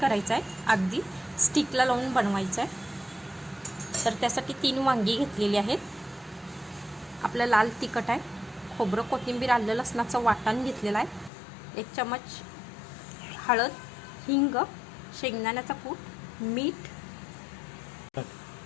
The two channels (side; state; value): right; drops out; at 11.3 s